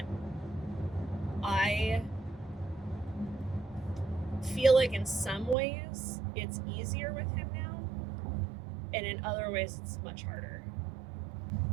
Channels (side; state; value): left; drops out; at 5.6 s